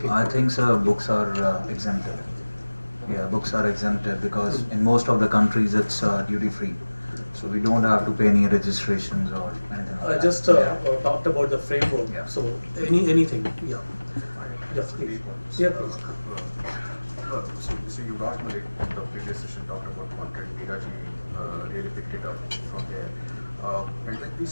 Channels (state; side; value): inverted; both; correlation -1.00